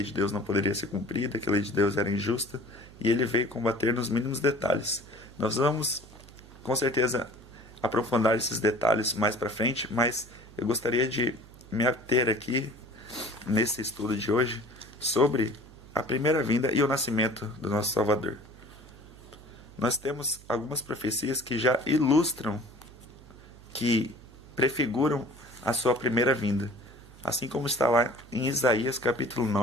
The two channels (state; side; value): noise; right; hum, 21 dB below the sound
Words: de Deus não poderia ser cumprida, que a lei de Deus era injusta, e ele veio combater nos mínimos detalhes. Nós vamos, com certeza, aprofundar esses detalhes mais para frente, mas eu gostaria de me ater aqui, nesse estudo de hoje, sobre a primeira vinda e o nascimento do nosso Salvador. Nós temos algumas profecias que já ilustram, que prefiguram a sua primeira vinda, assim como está lá em Isaías capítulo